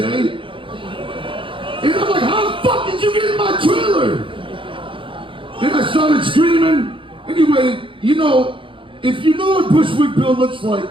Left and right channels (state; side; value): late; left; 0.25 ms